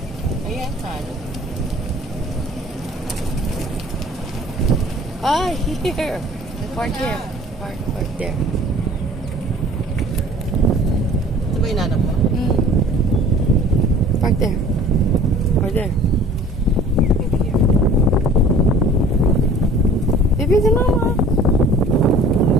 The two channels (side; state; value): both; normal; correlation 0.49